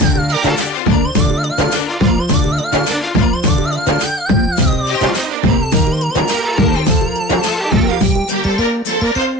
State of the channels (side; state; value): both; normal; correlation 0.44